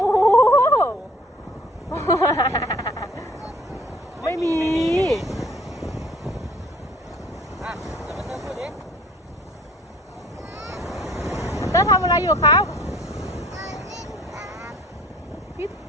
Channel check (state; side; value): normal; both; correlation 0.55